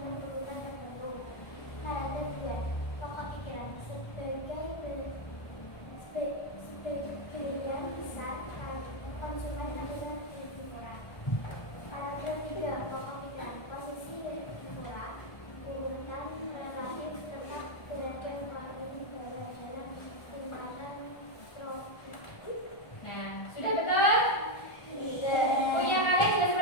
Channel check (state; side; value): late; right; 1.3 ms